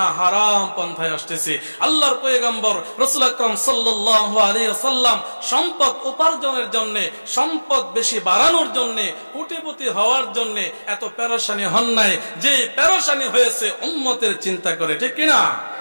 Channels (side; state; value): both; inverted; correlation -1.00